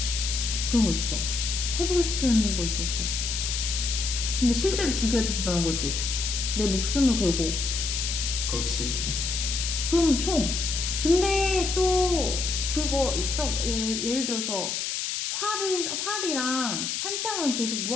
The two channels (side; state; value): left; noise; hiss, 2 dB below the sound